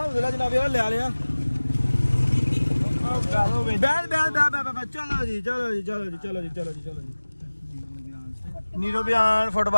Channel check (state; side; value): inverted; both; correlation -1.00